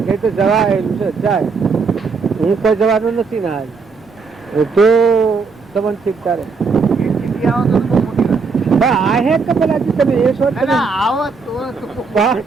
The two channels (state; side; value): quieter; left; 4.8 dB